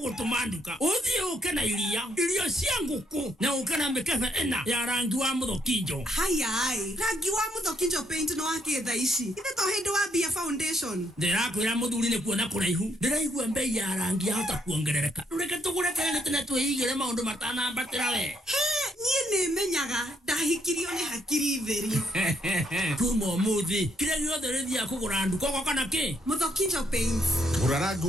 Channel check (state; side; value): normal; both; correlation 0.73